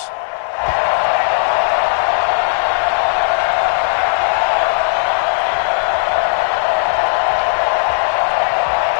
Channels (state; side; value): silent; right; digital silence